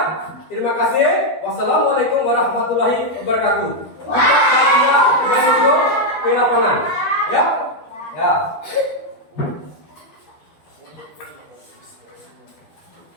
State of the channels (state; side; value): late; right; 13 ms